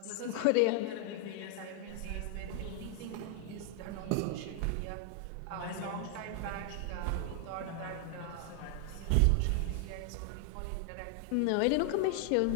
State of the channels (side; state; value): both; different; correlation 0.00